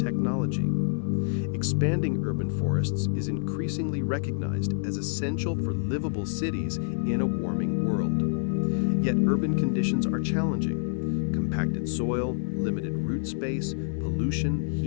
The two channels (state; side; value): silent; right; digital silence